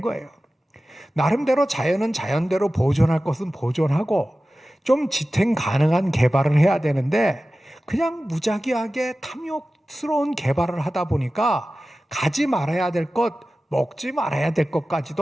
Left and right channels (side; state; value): both; normal; correlation 0.95